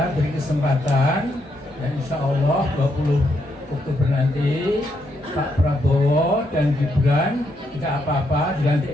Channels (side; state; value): both; normal; correlation 0.78